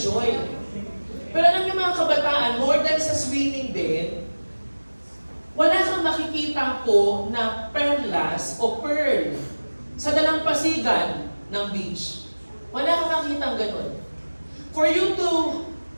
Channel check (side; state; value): both; inverted; correlation -1.00